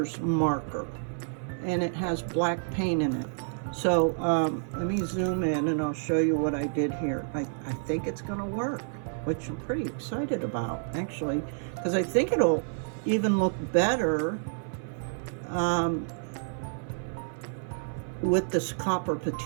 marker, and it has black paint in it. So let me zoom in and I'll show you what I did here. I think it's gonna work, which I'm pretty excited about, actually, because I think it'll even look better with this copper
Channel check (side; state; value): left; silent; 55 dB below the other